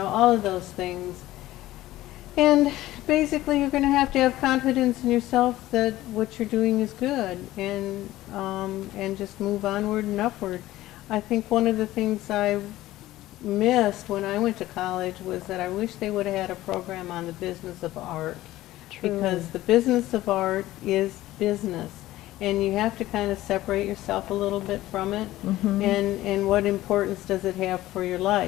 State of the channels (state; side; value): quieter; right; 16.0 dB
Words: of those things. And basically you're going to have confidence in yourself that what you're doing is good and just move onward and upward. I think one of the things I missed when I went to college was that I wish they would have had a program on the business of art. Because the business of art is business, and you have to kind of separate yourself a little bit from it, and what importance does it have for your